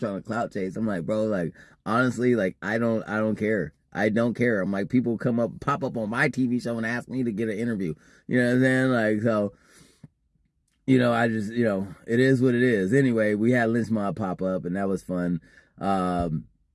to clout chase. I'm like, bro, like, honestly, like, I don't care. I don't care. I'm like, people pop up on my TV show and ask me to get an interview. You know what I'm saying? Like, so, you know, I just, you know, it is what it is. Anyway, we had Lynch Mob pop up and that was fun.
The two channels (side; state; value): both; identical; correlation 1.00